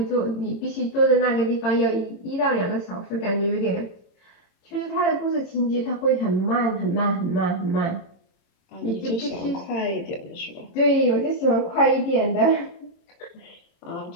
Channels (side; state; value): right; late; 26 ms